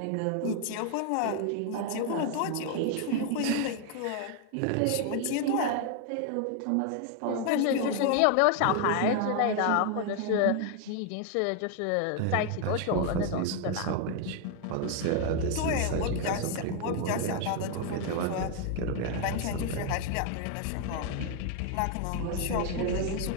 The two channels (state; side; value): different; both; correlation 0.00